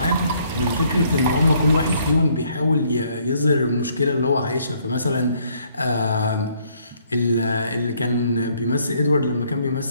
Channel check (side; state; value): both; inverted; correlation -0.66